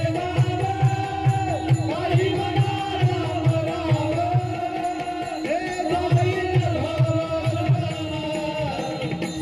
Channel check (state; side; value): identical; both; correlation 1.00